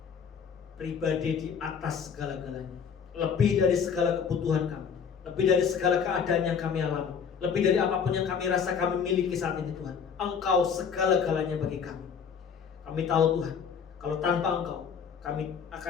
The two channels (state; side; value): quieter; right; 6.7 dB